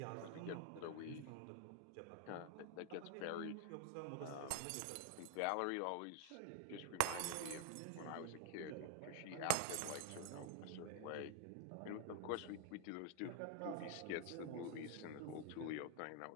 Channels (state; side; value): different; both; correlation 0.01